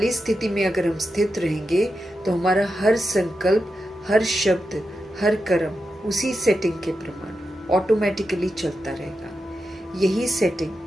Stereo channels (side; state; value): both; normal; correlation 0.89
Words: स्थिति में अगर हम स्थित रहेंगे तो हमारा हर संकल्प, हर शब्द, हर कर्म उसी सेटिंग के प्रमाण ऑटोमेटिकली चलता रहेगा। यही